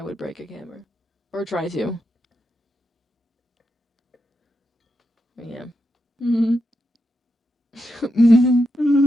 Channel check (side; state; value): both; normal; correlation 0.85